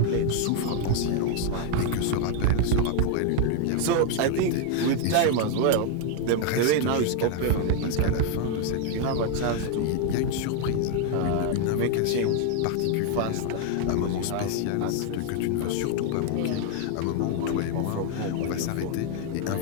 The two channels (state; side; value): different; both; correlation 0.00